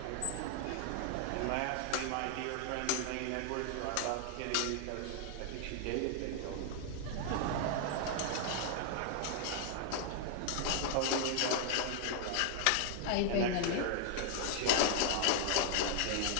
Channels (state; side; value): different; both; correlation 0.00